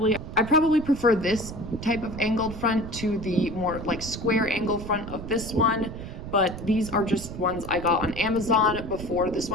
I probably prefer this type of angled front to the more like square angled front of this one, but these are just ones I got on Amazon before this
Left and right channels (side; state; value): right; noise; rumble, 10 dB below the sound